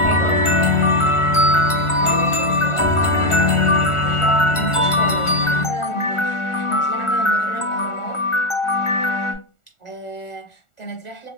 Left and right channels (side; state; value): right; late; 1.4 ms